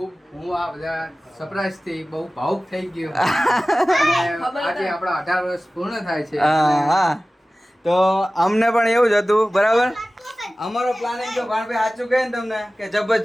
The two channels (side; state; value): both; normal; correlation 0.97